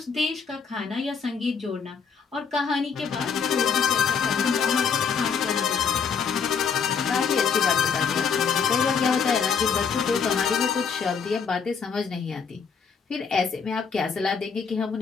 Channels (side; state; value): right; quieter; 6.2 dB